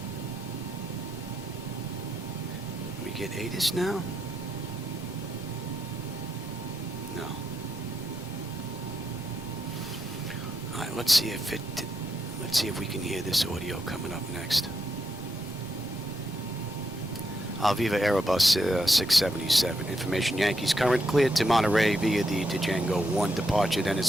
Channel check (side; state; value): both; normal; correlation 0.82